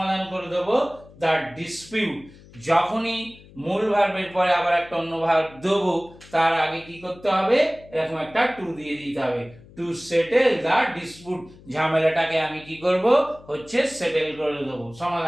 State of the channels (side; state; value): left; noise; hum, 22 dB below the sound